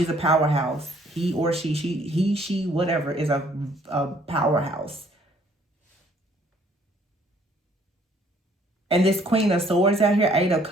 a powerhouse. He or she, whatever, is a powerhouse. And this Queen of Swords out here, Eight of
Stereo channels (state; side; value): normal; both; correlation 0.62